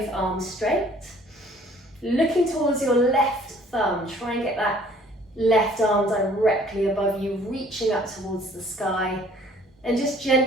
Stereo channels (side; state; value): both; normal; correlation 0.56